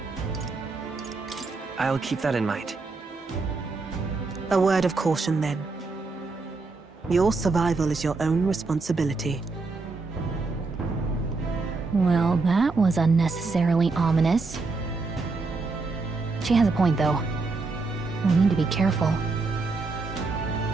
I'll keep that in mind. A word of caution, then. Your survival is your own responsibility. Well, that was unnecessarily ominous. She has a point, though. We need to be careful.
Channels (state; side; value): quieter; left; 3.9 dB